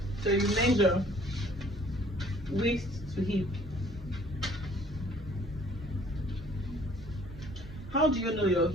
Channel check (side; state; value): both; normal; correlation 0.56